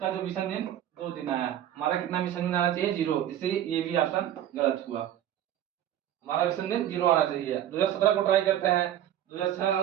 जो विषम दिन 2 दिन आया। हमारा कितना विषम दिन आना चाहिए? 0, इसलिए ये भी ऑप्शन गलत हुआ। हमारा विषम दिन 0 आना चाहिए। 2017 को ट्राई करते हैं। 2006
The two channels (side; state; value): left; quieter; 11.4 dB